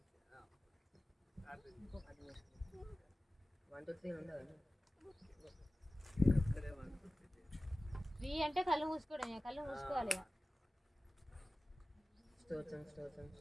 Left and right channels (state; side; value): normal; both; correlation 0.96